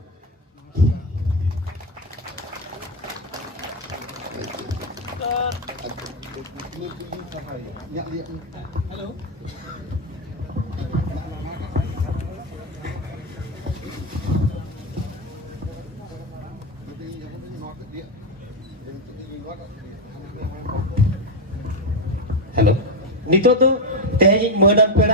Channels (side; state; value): both; normal; correlation 0.07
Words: हेलो हेलो नितो तो तेज मदन